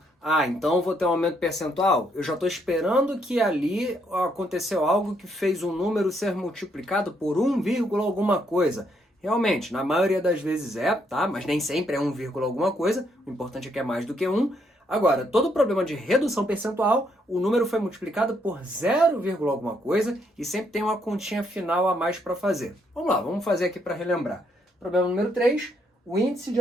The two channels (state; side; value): normal; both; correlation 0.73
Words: Ah, então vou ter um aumento percentual? Eu já estou esperando que ali aconteceu algo que fez um número ser multiplicado por 1, alguma coisa. Realmente, na maioria das vezes é, tá? Mas nem sempre é 1, alguma coisa. O importante é que é mais do que 1. Agora, todo problema de redução percentual, o número foi multiplicado por 0, alguma coisa e sempre tem uma continha final a mais para fazer. Vamos lá, vamos fazer aqui para relembrar. Problema número 3, o índice de